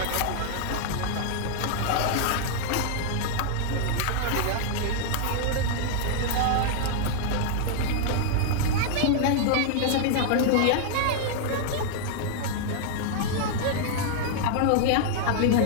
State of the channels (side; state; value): both; different; correlation -0.01